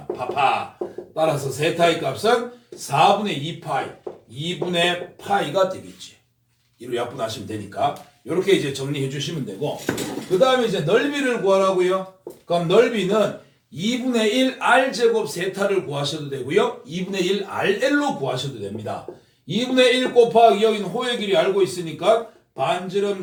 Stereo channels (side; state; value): both; identical; correlation 1.00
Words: 파파. 따라서 세타의 값은 4분의 2파이, 2분의 파이가 되겠지. 이로 약분하시면 되니까 이렇게 이제 정리해 주시면 되고 그 다음에 이제 넓이를 구하라고요. 그럼 넓이는 2분의 1 r제곱 세타를 구하셔도 되고요. 2분의 1 rl로 구하셔도 됩니다. 2분의 1 곱하기 여기는 호의 길이 알고 있으니까 반지름